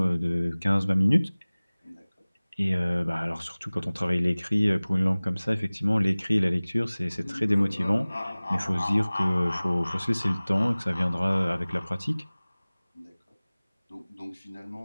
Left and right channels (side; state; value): both; inverted; correlation -0.99